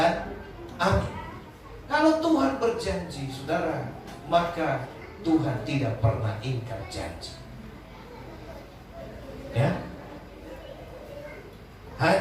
amin. Kalau Tuhan berjanji, saudara, maka Tuhan tidak pernah ingkar janji. Ya.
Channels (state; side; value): identical; both; correlation 1.00